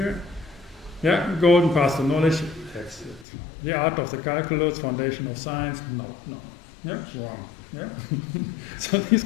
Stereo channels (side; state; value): right; drops out; at 3.2 s